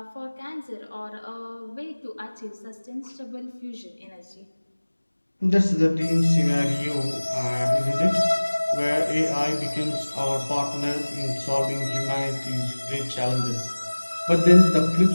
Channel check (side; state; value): both; inverted; correlation -1.00